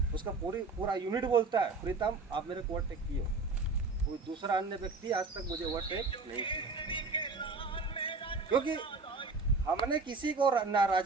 उसका पूरा यूनिट बोलता है, प्रीतम आप मेरे को ओवरटेक किए। कोई दूसरा अन्य व्यक्ति आज तक मुझे ओवरटेक नहीं किया, क्योंकि हमने किसी को ना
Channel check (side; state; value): left; quieter; 3.9 dB